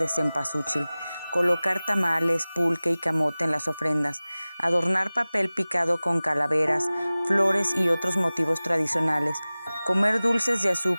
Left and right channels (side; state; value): both; inverted; correlation -0.98